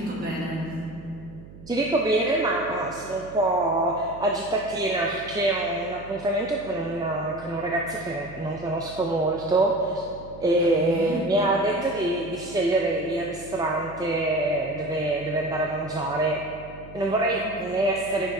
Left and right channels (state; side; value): noise; right; hum, 18 dB below the sound